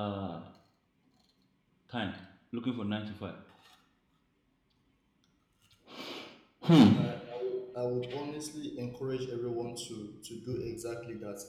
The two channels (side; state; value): both; identical; correlation 1.00